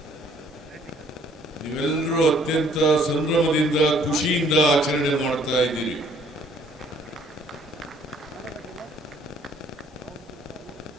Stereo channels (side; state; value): both; normal; correlation 0.61